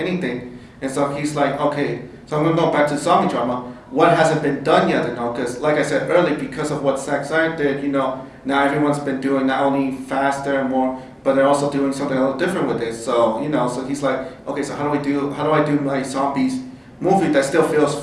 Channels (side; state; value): both; identical; correlation 1.00